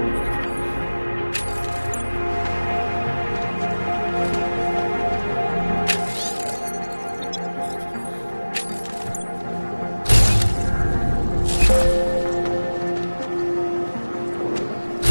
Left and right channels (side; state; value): both; inverted; correlation -1.00